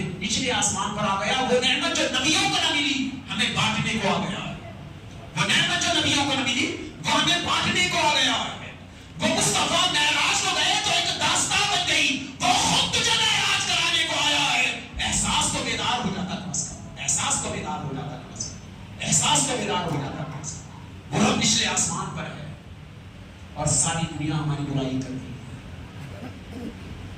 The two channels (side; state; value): both; identical; correlation 1.00